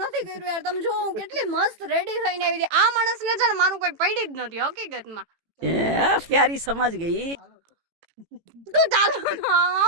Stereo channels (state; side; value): late; left; 18 ms